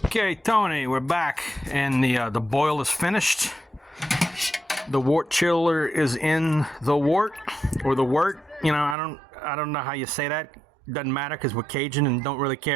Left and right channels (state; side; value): drops out; left; at 9.0 s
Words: Tony, we're back, and the boil is finished. The wort chiller is in the wort, or the wort. You know, I don't know how you say that. Doesn't matter because we're Cajun and don't really